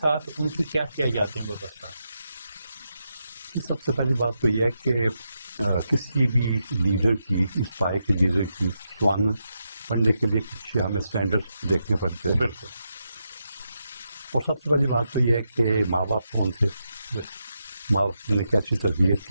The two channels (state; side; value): inverted; both; correlation -0.85